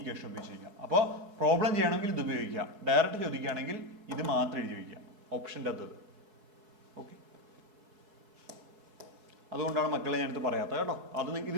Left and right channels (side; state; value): left; late; 4.7 ms